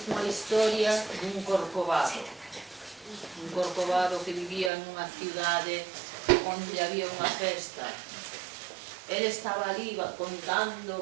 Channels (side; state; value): left; drops out; at 4.7 s